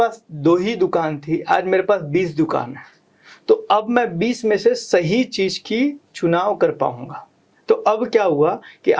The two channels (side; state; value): both; identical; correlation 1.00